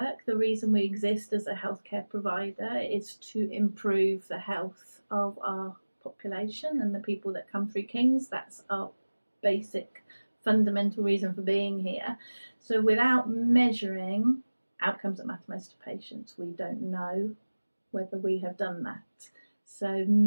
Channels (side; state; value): both; inverted; correlation -1.00